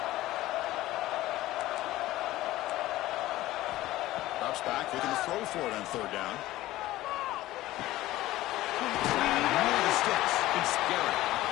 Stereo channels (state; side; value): quieter; right; 16.3 dB